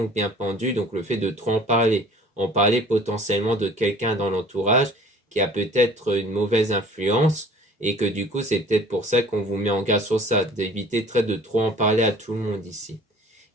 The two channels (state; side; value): normal; both; correlation 0.49